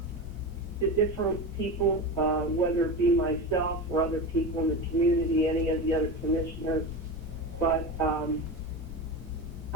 to different people, whether it be myself or other people in the community, any of the other commissioners. But,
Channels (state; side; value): normal; both; correlation 0.24